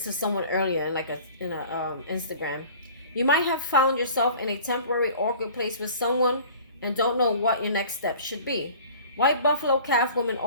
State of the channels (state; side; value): inverted; both; correlation -0.46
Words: to someone earlier in a Instagram. You might have found yourself in a temporary awkward place with someone and don't know what your next step should be. White Buffalo Calf Woman